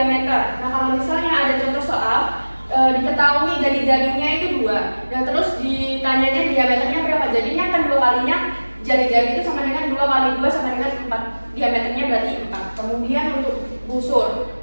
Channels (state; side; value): inverted; both; correlation -1.00